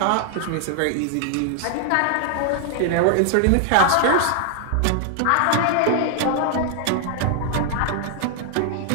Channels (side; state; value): both; different; correlation 0.00